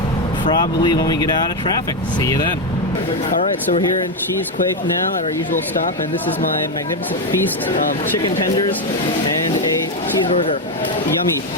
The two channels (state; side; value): normal; both; correlation 0.07